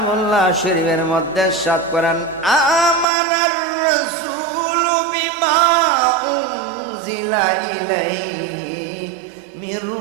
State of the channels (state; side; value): drops out; left; at 3.1 s